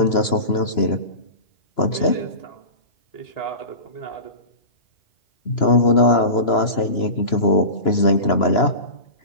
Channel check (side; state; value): right; late; 2.9 ms